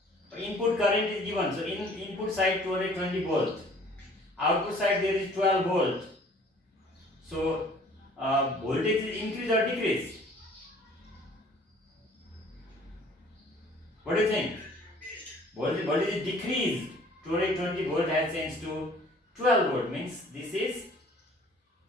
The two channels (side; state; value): both; normal; correlation 0.53